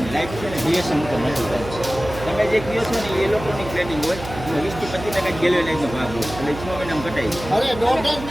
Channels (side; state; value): right; noise; hum, 11 dB below the sound